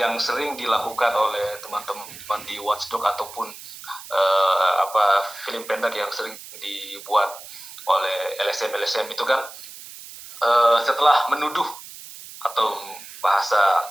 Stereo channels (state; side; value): noise; right; hiss, 15 dB below the sound